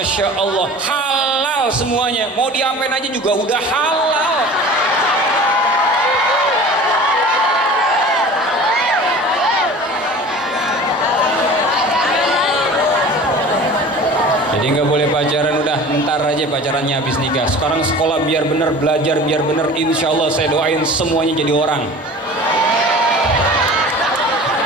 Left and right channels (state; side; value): normal; both; correlation 0.40